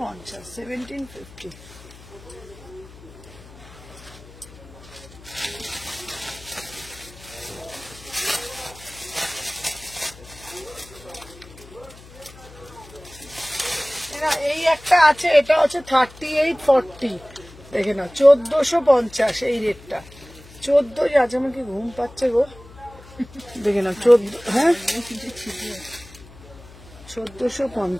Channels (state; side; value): noise; left; hum, 20 dB below the sound